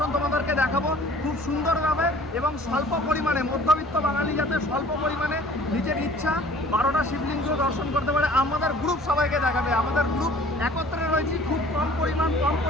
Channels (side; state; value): both; normal; correlation 0.50